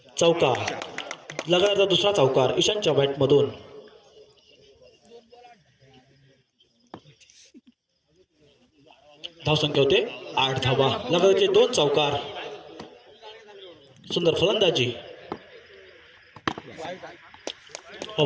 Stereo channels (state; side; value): identical; both; correlation 1.00